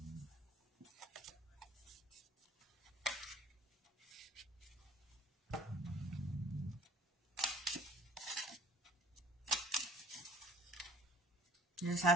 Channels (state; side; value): normal; both; correlation 0.50